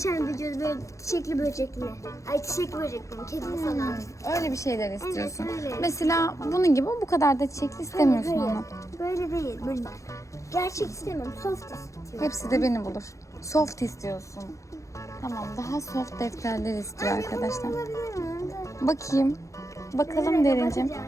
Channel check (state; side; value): late; right; 0.15 ms